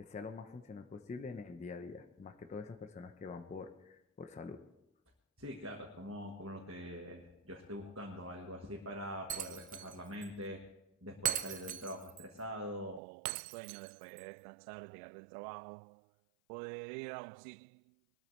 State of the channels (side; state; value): left; drops out; at 13.0 s